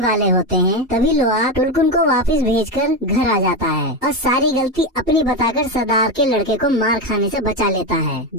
वाले होते हैं, तभी लोआक टुलकुन को वापस भेजकर घर आ जाता है और सारी गलती अपनी बताकर सरदार के लड़के को मार खाने से बचा लेता है,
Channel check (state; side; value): normal; both; correlation 0.13